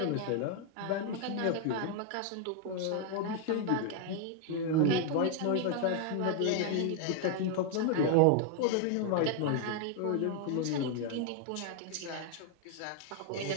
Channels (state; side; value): different; both; correlation 0.00